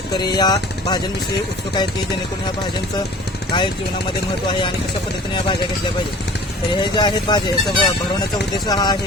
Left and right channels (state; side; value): normal; both; correlation 0.46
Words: या भाज्यांविषयी उत्सुक आहेत की जेणेकरून ह्या भाज्यांचं काय जीवनामध्ये महत्त्व आहे आणि कशा पद्धतीने या भाज्या घेतल्या पाहिजे. तर हे ज्या आहेत भाज्या, ह्याचा भरवण्याचा उद्देश हा